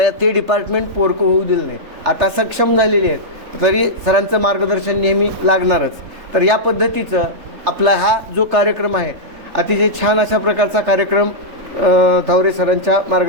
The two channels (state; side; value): late; left; 3.3 ms